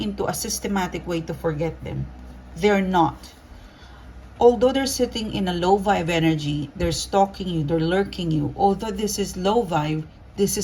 a systematic way to forget them. They're not. Although they're sitting in a low vibe energy, they're stalking you, they're lurking you. Although this is low vibe, this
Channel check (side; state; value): both; identical; correlation 1.00